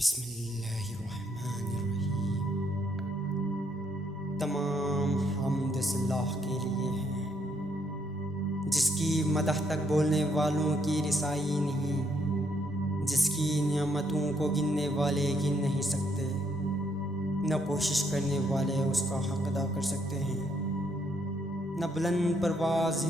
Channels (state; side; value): normal; both; correlation 0.72